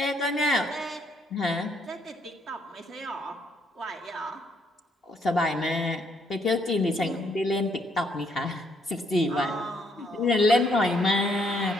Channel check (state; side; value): normal; both; correlation 0.71